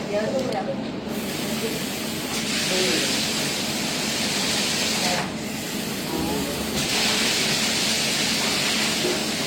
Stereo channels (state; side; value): identical; both; correlation 1.00